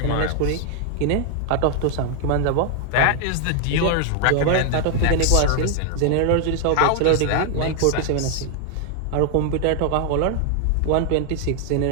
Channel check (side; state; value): both; different; correlation 0.00